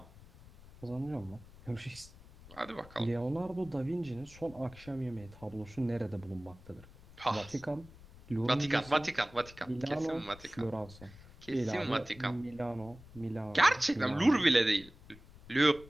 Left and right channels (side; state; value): left; noise; rumble, 20 dB below the sound